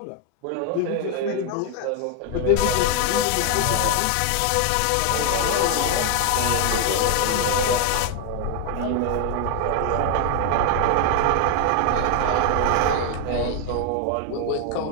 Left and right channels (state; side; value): different; both; correlation 0.00